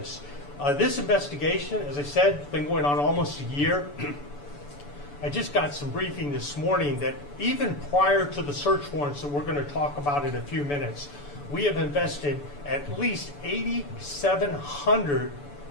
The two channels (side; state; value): right; late; 6.9 ms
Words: This investigation, as I said, has been going on almost a year. I just got some briefing this morning that even prior to the search warrants that we're going to talk about in a few minutes, we have invested at least 8,700